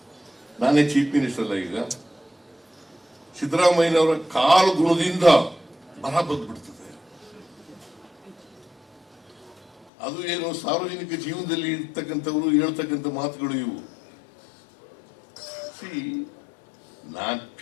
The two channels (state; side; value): drops out; right; at 9.9 s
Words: ನಾನೇ ಚೀಫ್ ಮಿನಿಸ್ಟರ್ ಅಲ್ಲ, ಈಗ ಸಿದ್ದರಾಮಯ್ಯನವರ ಕಾಲು ಗುಣದಿಂದ ಬರ ಬಂದ್ಬಿಡ್ತದೆ. ಅದು ಏನು ಸಾರ್ವಜನಿಕ ಜೀವನದಲ್ಲಿ ಇರ್ತಕ್ಕಂಥವ್ರು ಹೇಳ್ತಕ್ಕಂಥ ಮಾತುಗಳು ಇವು. ನಾನ್